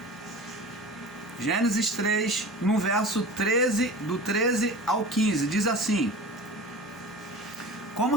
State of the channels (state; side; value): normal; both; correlation 0.36